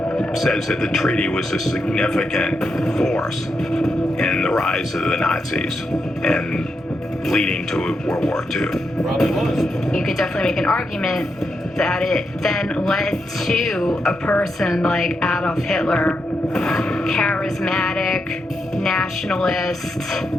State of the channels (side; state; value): both; normal; correlation 0.84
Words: says that the treaty was a significant force in the rise of the Nazis and leading to World War II. You could definitely make an argument that it then led to a person like Adolf Hitler, charismatic, nationalist,